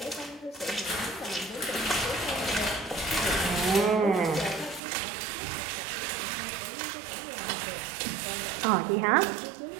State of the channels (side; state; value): left; drops out; at 4.8 s